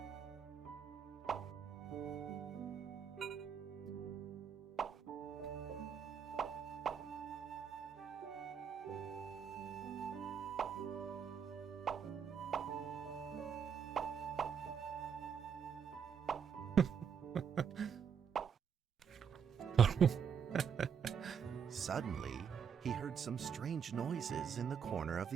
Suddenly, he heard some strange noises in the corner of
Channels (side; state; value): left; quieter; 7.1 dB